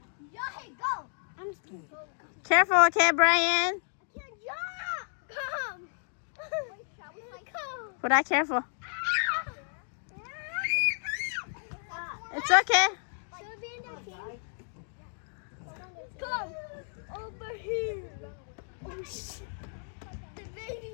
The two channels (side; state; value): right; silent; digital silence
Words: Careful, okay, Brian. Can't jump. Come. Come. But I careful. It's okay. Should we be in that team? Come over here. Oh shit. The